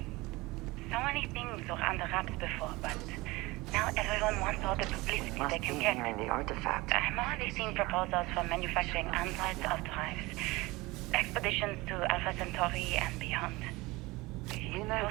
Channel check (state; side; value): quieter; left; 21.8 dB